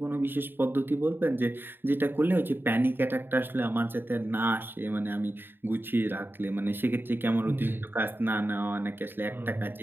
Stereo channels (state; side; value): late; left; 0.098 ms